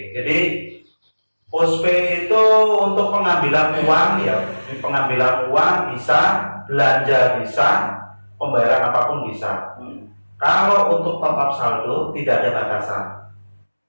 Jadi postpay itu untuk pengambilan uang ya, pengambilan uang bisa, belanja bisa, pembayaran apapun bisa. Kalau untuk top up saldo tidak ada batasan.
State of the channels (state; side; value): inverted; both; correlation -1.00